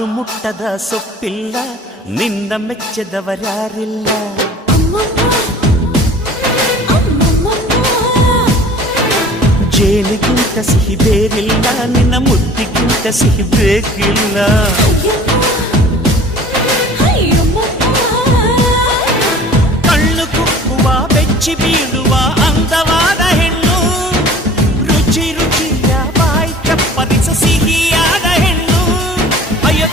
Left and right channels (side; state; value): both; normal; correlation 0.47